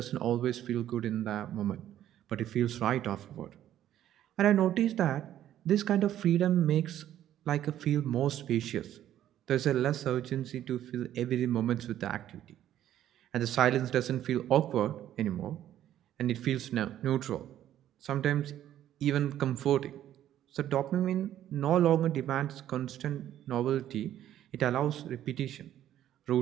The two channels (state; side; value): quieter; left; 11.8 dB